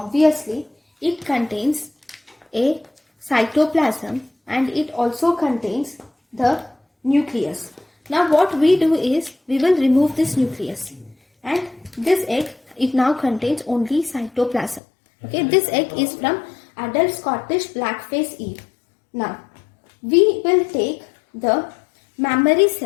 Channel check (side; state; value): right; drops out; at 14.8 s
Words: it contains a cytoplasm and it also contains the nucleus. Now what we do is we will remove this nucleus, and this egg, it now contains only cytoplasm. Okay, this egg is from adult Scottish blackface eve. Now we will take the mammary